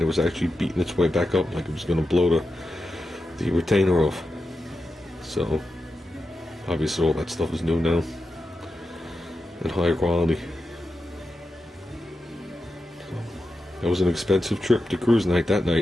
it was actually beating its way back up like it was gonna blow the retainer off. So, obviously all that stuff is new now. And higher quality. So, that was an expensive trip to cruise night that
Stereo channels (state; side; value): normal; both; correlation 0.89